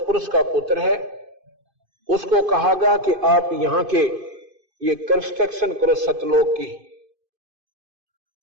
का पुत्र है, उसको कहा गया कि आप यहां के ये कंस्ट्रक्शन करो सतलोक की।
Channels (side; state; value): left; late; 2.5 ms